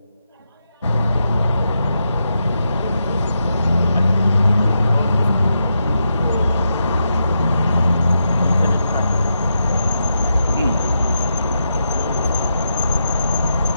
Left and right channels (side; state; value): both; inverted; correlation -0.85